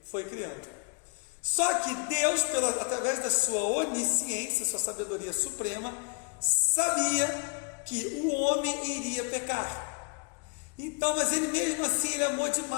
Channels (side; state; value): right; quieter; 34.7 dB